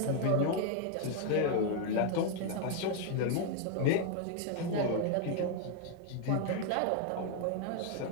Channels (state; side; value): different; both; correlation 0.01